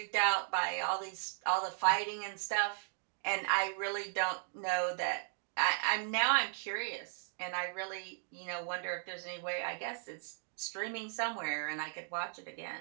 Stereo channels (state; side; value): silent; left; digital silence